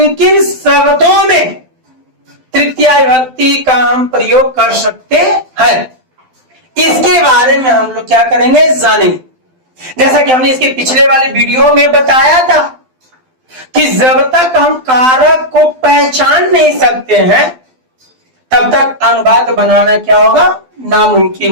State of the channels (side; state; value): left; late; 12 ms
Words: किन शब्दों में तृतीय विभक्ति का हम प्रयोग कर सकते हैं, इसके बारे में हम लोग क्या करेंगे? जानेंगे। जैसा कि हमने इसके पिछले वाले वीडियो में बताया था कि जब तक हम कारक को पहचान नहीं सकते हैं तब तक अनुवाद बनाना क्या होगा?